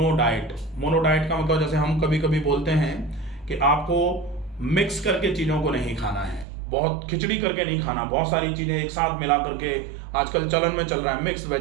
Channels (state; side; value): drops out; left; at 6.5 s